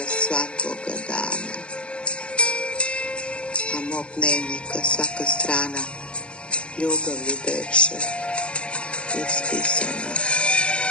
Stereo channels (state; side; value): late; right; 0.057 ms